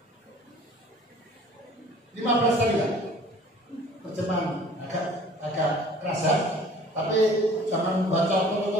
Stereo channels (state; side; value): normal; both; correlation 0.49